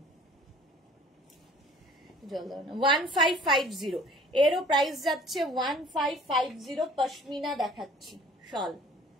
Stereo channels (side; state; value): both; normal; correlation 0.51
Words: 1550, এরও প্রাইস যাচ্ছে 1550। পশমিনা দেখাচ্ছি শল।